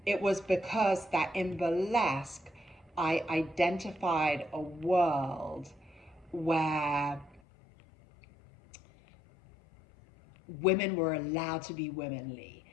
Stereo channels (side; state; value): right; drops out; at 7.4 s